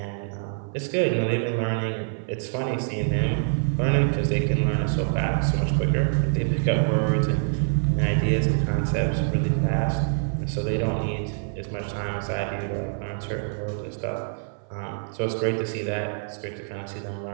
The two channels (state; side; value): silent; left; 55 dB below the other